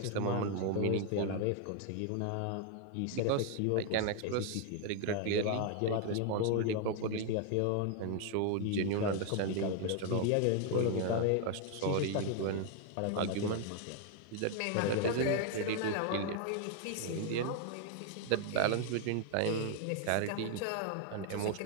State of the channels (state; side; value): different; both; correlation 0.00